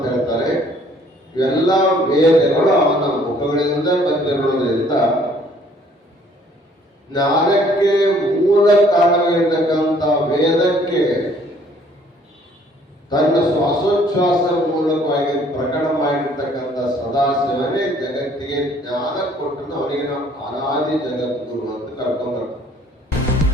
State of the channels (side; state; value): both; normal; correlation 0.60